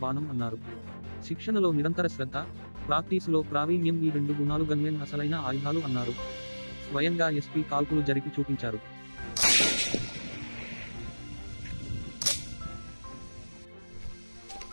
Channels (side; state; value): both; inverted; correlation -1.00